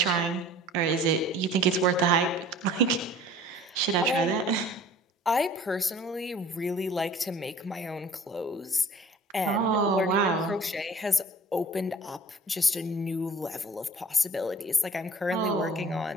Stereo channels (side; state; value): both; normal; correlation 0.48